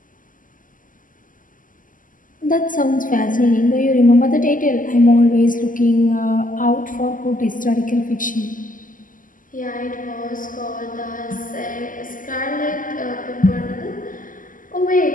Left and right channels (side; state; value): right; late; 0.38 ms